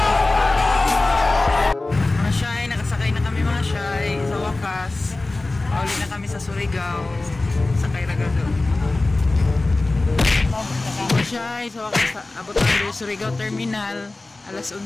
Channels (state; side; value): quieter; right; 3.1 dB